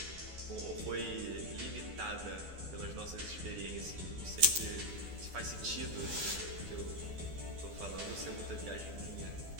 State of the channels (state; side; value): late; left; 12 ms